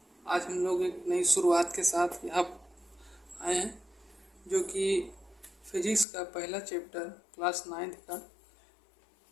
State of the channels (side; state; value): right; drops out; at 6.1 s